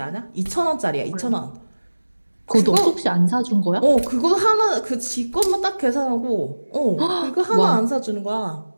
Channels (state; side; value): inverted; both; correlation -1.00